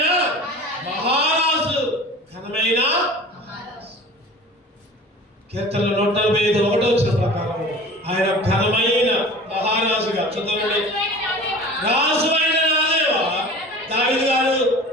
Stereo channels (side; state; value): both; normal; correlation 0.40